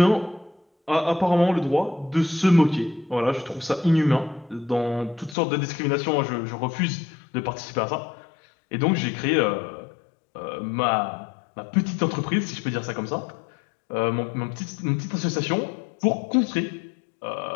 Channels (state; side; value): drops out; right; at 5.4 s